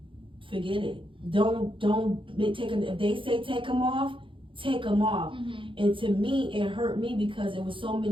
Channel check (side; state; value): left; late; 0.25 ms